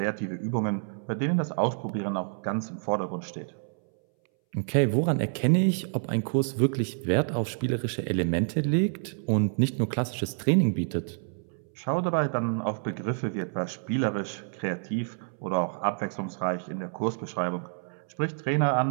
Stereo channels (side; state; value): left; silent; 59 dB below the other